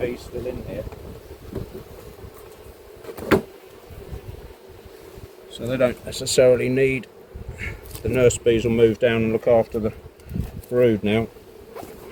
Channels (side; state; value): both; identical; correlation 1.00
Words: still in here. So they don't necessarily need, the nurse bees will move down and look after the brood now.